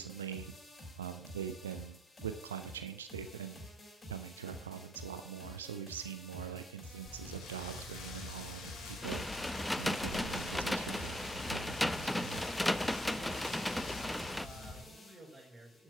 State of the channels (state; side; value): normal; both; correlation 0.66